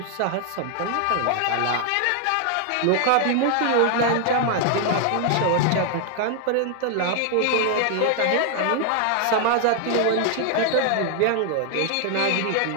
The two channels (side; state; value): both; different; correlation 0.00